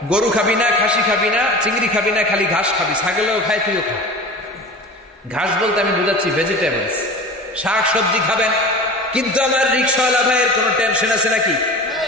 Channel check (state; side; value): normal; both; correlation 0.36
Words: গরু খাবি না, খাসি খাবি না, চিংড়ি খাবি না, খালি ঘাস খাবি। ছাগলেও খায়, তুইও খা। ঘাস বলতে আমি বুঝাচ্ছি ভেজিটেবলস, শাক সবজি খাবেন। কিন্তু আমার রিক্সাওয়ালা ভাইয়ের কোনো টেনশন আছে নাকি?